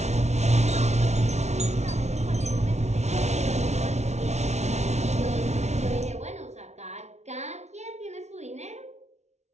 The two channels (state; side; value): late; left; 0.32 ms